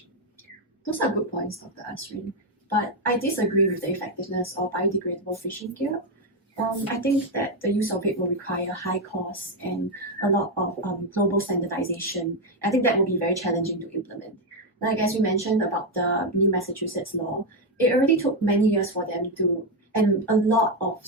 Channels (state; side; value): normal; both; correlation 0.05